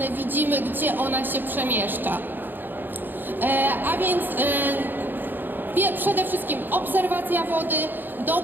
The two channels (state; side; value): late; left; 0.092 ms